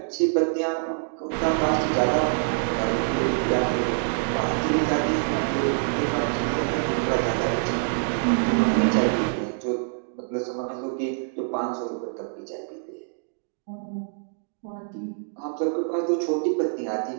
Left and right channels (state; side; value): silent; left; digital silence